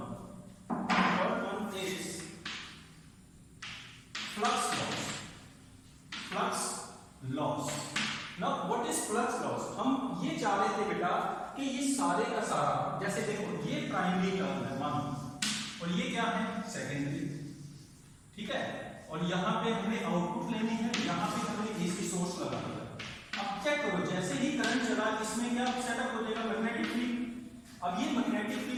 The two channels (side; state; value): both; identical; correlation 1.00